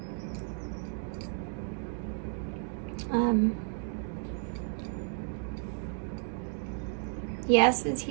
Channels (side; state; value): left; silent; 56 dB below the other